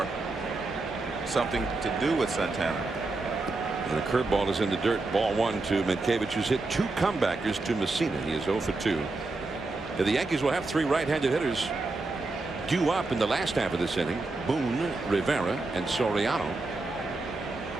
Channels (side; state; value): left; quieter; 3.3 dB